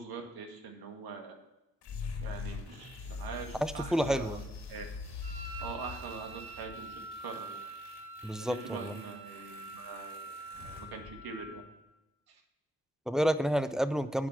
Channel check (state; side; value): normal; both; correlation 0.75